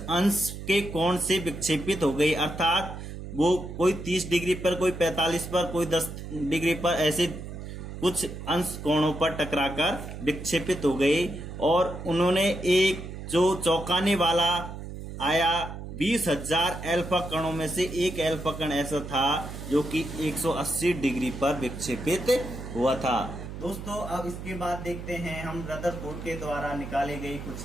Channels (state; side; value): noise; right; hum, 9 dB below the sound